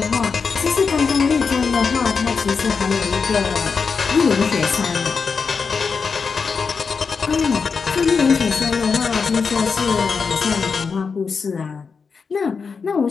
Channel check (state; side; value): quieter; right; 5.3 dB